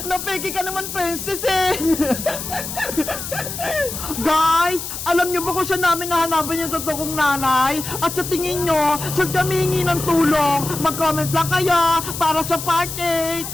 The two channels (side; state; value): left; noise; hiss, 7 dB below the sound